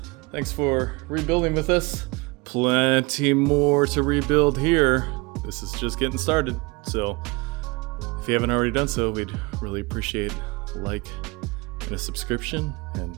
thanks for rebuilding with us. Plenty more to rebuild here. This is just getting started. So if you haven't already done so, we'd really appreciate a like and a subscription.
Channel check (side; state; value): left; quieter; 26.0 dB